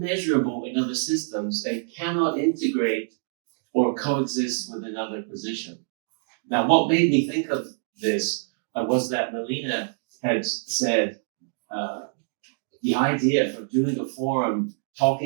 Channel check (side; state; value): left; silent; digital silence